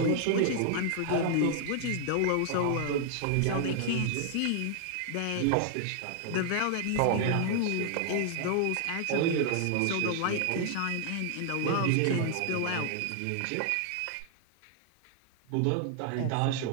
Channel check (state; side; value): different; both; correlation 0.00